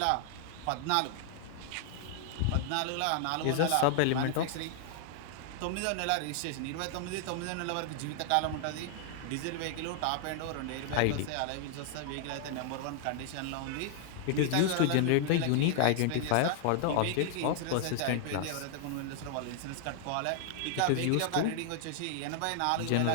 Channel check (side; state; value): both; different; correlation 0.00